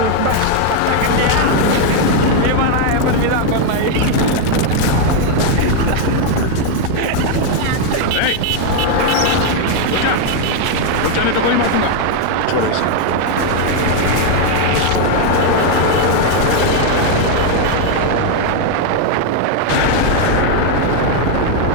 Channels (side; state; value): both; different; correlation 0.01